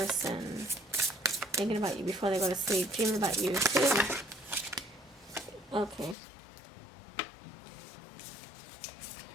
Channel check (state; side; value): drops out; right; at 6.2 s